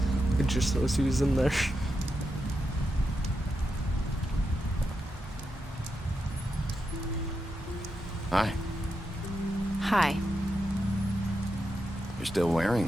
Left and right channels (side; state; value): both; normal; correlation 0.86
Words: It just knows he was in there. Hi. Hi. You're still